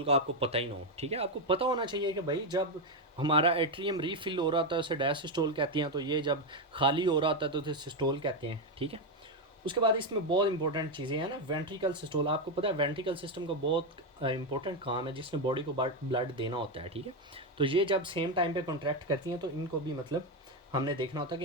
का आपको पता ही ना हो, ठीक है। आपको पता होना चाहिए कि भाई जब हमारा एट्रियम रीफिल हो रहा था उसे डायसिस्टोल कहते हैं, तो ये जब खाली हो रहा था तो उसे सिस्टोल कहते हैं, ठीक है। उसके बाद इसमें बहुत इंपॉर्टेंट चीज़ें हैं ना, वेंट्रिकल सिस्टोल। आपको पता है वेंट्रिकल सिस्टम का बहुत इंपॉर्टेंट काम है जिसमें बॉडी को ब्लड देना होता है, ठीक है। तो ये जब सेम टाइम पे कॉन्ट्रैक्ट करती हैं तो इनको भी मतलब हमने देखना होता है कि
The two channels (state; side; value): normal; both; correlation 0.07